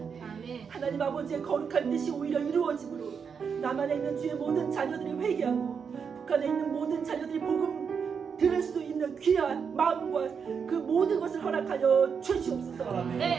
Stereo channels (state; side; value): quieter; left; 6.4 dB